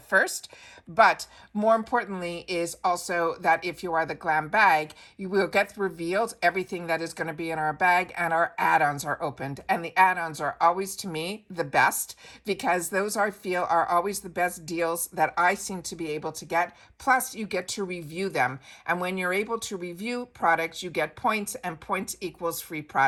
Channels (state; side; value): identical; both; correlation 1.00